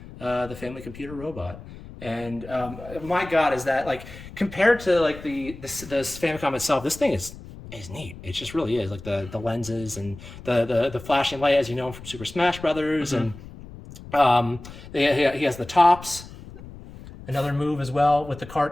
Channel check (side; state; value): left; noise; rumble, 15 dB below the sound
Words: the family computer robot. And my God, is that like compared to like the Famicom itself, this thing is neat. It just really is, like the lenses and the flashing light, as you know from Super Smash Brothers, and he has the tops. Another move as well with